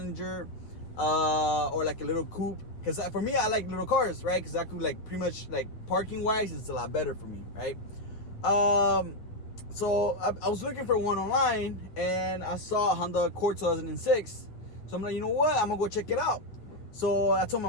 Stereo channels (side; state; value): right; late; 9.1 ms